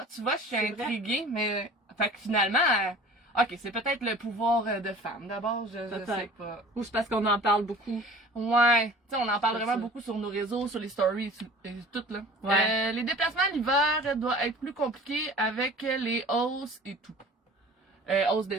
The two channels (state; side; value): normal; both; correlation 0.44